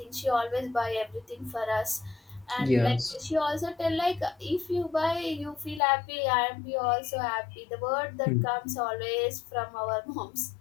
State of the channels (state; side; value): drops out; right; at 5.8 s